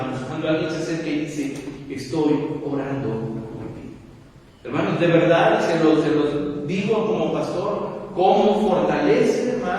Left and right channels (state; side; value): identical; both; correlation 1.00